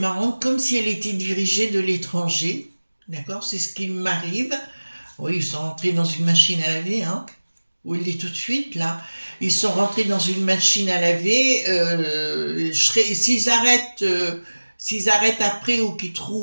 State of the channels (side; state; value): both; inverted; correlation -1.00